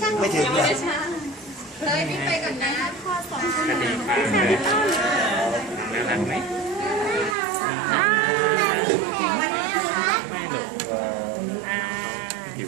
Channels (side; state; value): left; drops out; at 7.4 s